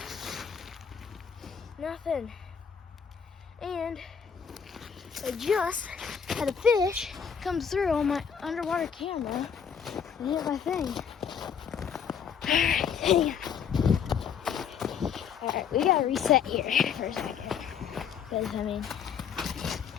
Nothing. And I just had a fish come through on my underwater camera and hit my thing. Alright, we gotta reset here for a second. Because, I mean,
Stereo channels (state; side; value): quieter; right; 7.3 dB